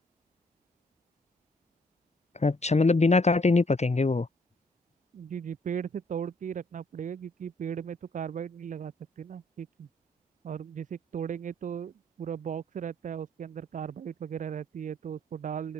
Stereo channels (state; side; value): normal; both; correlation 0.66